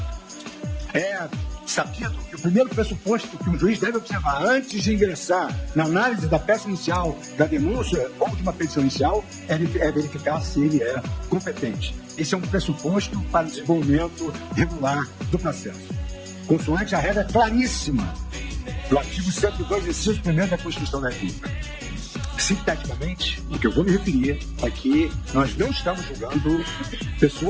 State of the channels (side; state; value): both; identical; correlation 1.00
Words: É sabido que o primeiro pressuposto que um juiz deve observar antes de ingressar na análise da peça inicial, da denúncia ou de uma petição inicial é verificar se ele é competente. Esse é um pressuposto para o desenvolvimento regular do processo. Consoante a regra claríssima do artigo 102, inciso 1º da Constituição da República. Sinteticamente, o que eu vou me referir é que nós não estamos julgando